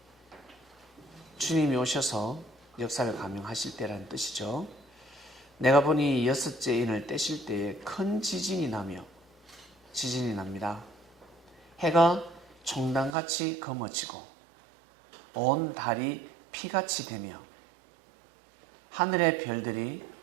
주님이 오셔서 역사를 감행하실 때라는 뜻이죠. 내가 보니 여섯째 인을 떼실 때에 큰 지진이 납니다. 해가 총단같이 검어지고 온 달이 피같이 되며 하늘의 별들이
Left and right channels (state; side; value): drops out; left; at 13.2 s